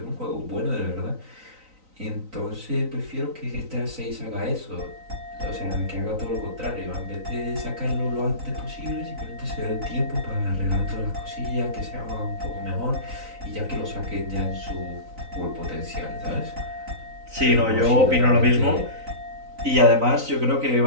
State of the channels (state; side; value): late; left; 3.9 ms